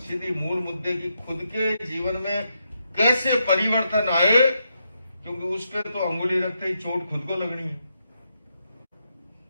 मूल मुद्दे की खुद के जीवन में कैसे परिवर्तन आए, क्योंकि उस पर तो अंगुली रखते ही चोट खुद को लगनी है।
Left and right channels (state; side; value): inverted; both; correlation -0.82